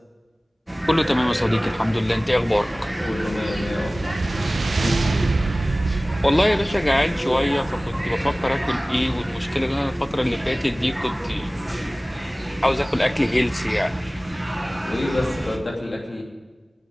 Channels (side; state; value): both; normal; correlation 0.98